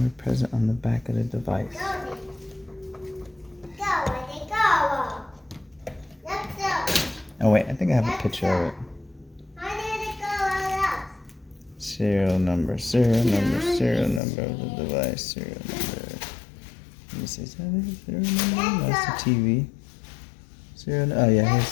present on the back of the device. Oh wait, I think I have a picture of it. Serial number of the device, serial number. Let me see, is that it? Serial number? That's the TV. Oh yeah, here's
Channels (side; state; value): right; drops out; at 14.2 s